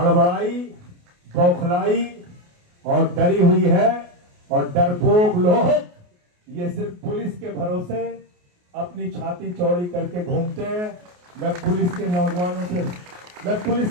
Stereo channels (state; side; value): late; left; 28 ms